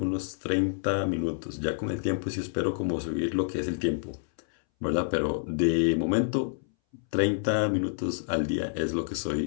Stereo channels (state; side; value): silent; right; 59 dB below the other